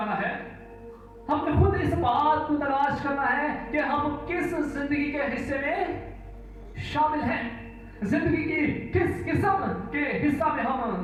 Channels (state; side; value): identical; both; correlation 1.00